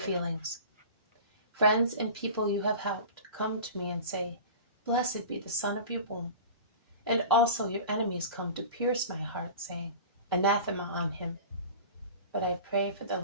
Friends and people you have helped come to me and say, blessed be the son of your womb. And also your enemies come to pierce my heart, saying, anathema on him. But I pray for the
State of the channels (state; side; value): inverted; both; correlation -0.36